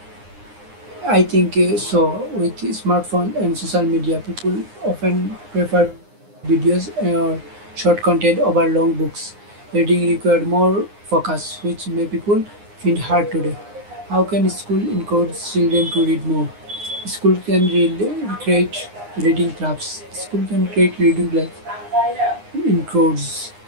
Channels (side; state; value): left; late; 9.7 ms